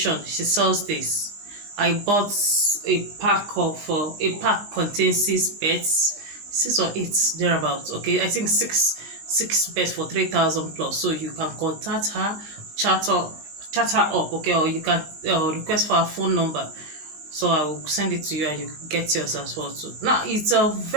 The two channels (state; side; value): late; left; 20 ms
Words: she sells this. I bought a pack contains 6 beds, 6 or 8 thereabouts, okay. I think six beds for 3,000 plus. So you can contact her, chat her up, okay, or you can request for her phone number, so I will send it to you and you get yours as well too. Now it's I